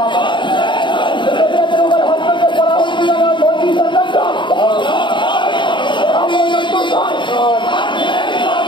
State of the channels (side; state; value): right; late; 0.23 ms